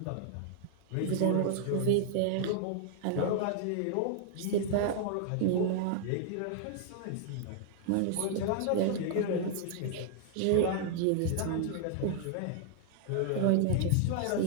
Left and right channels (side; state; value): both; different; correlation -0.01